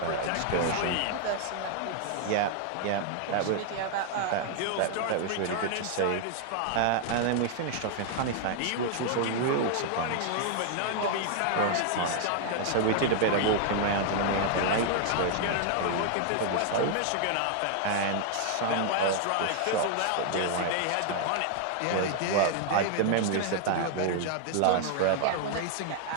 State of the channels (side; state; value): both; different; correlation 0.00